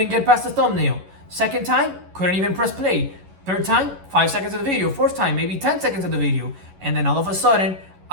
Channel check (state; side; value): late; left; 11 ms